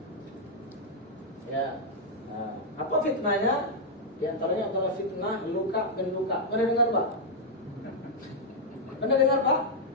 Ya, nah, apa fitnahnya? Di antaranya adalah fitnah luka bin luka. Pernah dengar Pak? Pernah dengar Pak?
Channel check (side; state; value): both; normal; correlation -0.04